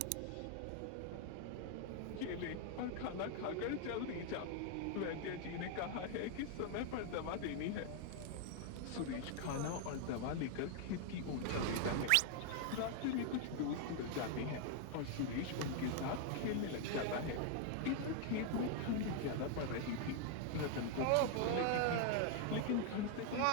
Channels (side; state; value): both; different; correlation 0.00